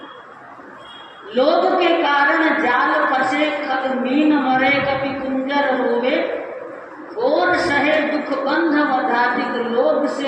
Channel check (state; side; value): identical; both; correlation 1.00